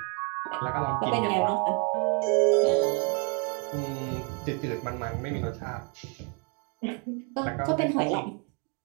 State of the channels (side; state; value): left; quieter; 35.2 dB